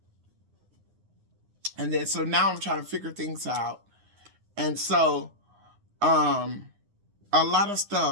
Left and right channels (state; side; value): late; left; 9.8 ms